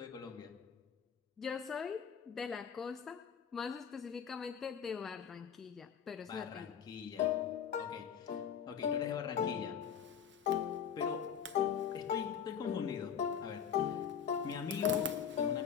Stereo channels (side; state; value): right; quieter; 7.7 dB